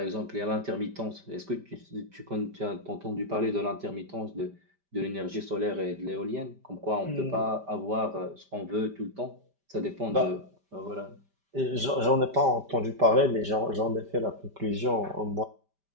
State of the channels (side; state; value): left; late; 5.1 ms